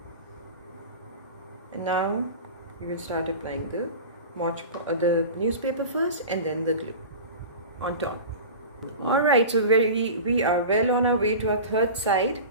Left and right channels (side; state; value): both; inverted; correlation -0.32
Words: And now we will start applying the newspaper first and then the glue on top. Alright, so we are well on our way to our third side.